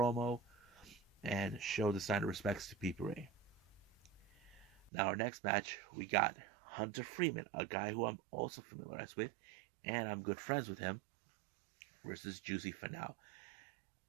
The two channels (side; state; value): left; drops out; at 4.9 s